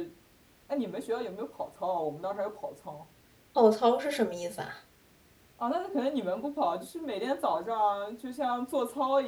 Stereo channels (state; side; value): identical; both; correlation 1.00